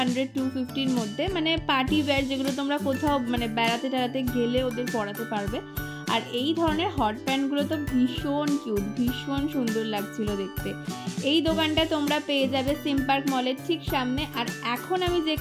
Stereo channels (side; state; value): both; identical; correlation 1.00